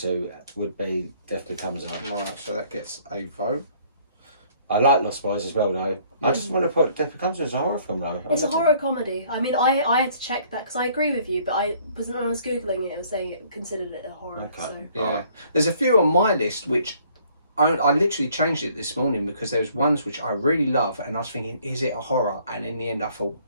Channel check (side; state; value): both; inverted; correlation -0.61